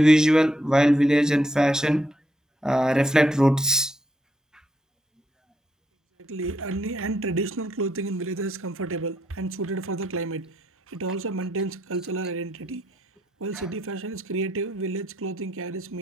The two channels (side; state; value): both; normal; correlation 0.76